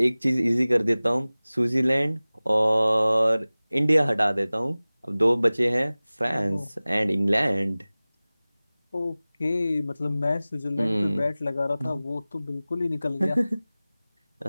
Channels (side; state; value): both; inverted; correlation -0.98